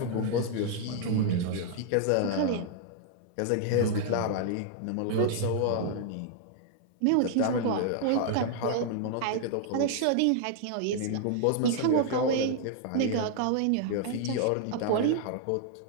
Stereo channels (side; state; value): both; different; correlation 0.00